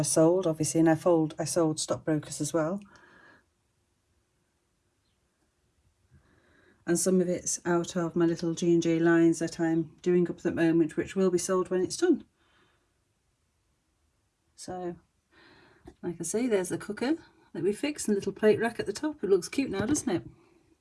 sold, obviously, and I sold stockbrokers as well. And some of it's out of my little G&J lines that I'm doing up at the moment, which will be sold when it's done. So, like I say, there's the cooker that we fixed and the little plate rack at the top. It looks cute now, doesn't it?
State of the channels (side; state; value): both; identical; correlation 1.00